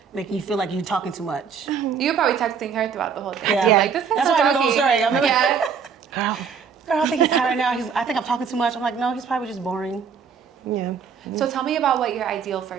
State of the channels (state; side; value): quieter; left; 6.5 dB